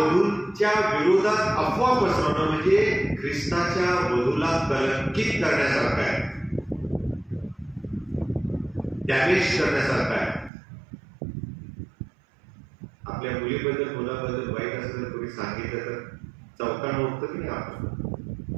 विरोधात अफवा पसरवणं म्हणजे ख्रिस्ताच्या वधूला कलंकित करण्यासारखं आहे, डॅमेज करण्यासारखं आहे. आपल्या मुलीबद्दल मुलाबद्दल वाईट असं जर कोणी सांगितलं तर चौकानं उठतं की नाही आपण?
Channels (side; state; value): left; drops out; at 10.5 s